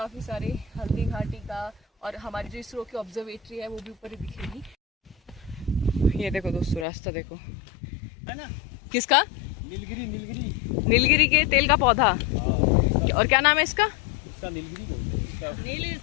सारे हल्दी घाटी का, और हमारी जो इसरो की ऑब्जर्वेटरी है वो भी ऊपर ही दिखेगी। ये देखो दोस्तों रास्ता देखो, है ना? किसका? नीलगिरी, नीलगिरी, नीलगिरी के तेल का पौधा। और क्या नाम है इसका? इसका नीलगिरी बोलते हैं। इसका नीली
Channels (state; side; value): drops out; right; at 6.9 s